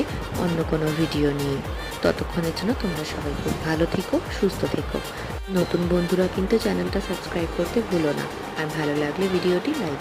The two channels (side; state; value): both; identical; correlation 1.00